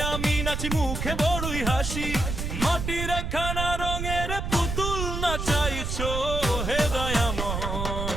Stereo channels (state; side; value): noise; right; rumble, 3 dB below the sound